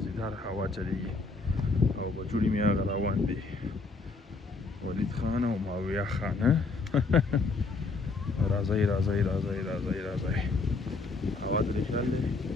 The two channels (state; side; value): quieter; right; 3.9 dB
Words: هوا چلیږي او بچوړي مې هغه روان دي ولید خان او ماویه خان راځئ راځئ راځئ راځئ راځئ هوا ترې خیال دی